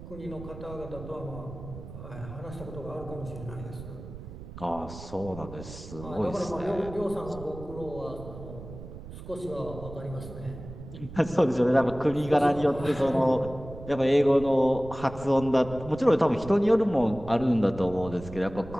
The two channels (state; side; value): noise; right; rumble, 13 dB below the sound